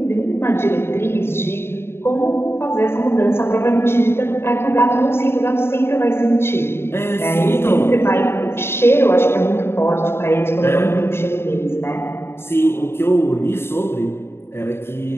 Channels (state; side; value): late; right; 0.12 ms